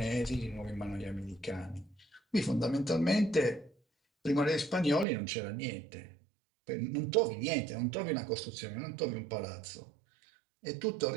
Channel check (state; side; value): drops out; left; at 5.1 s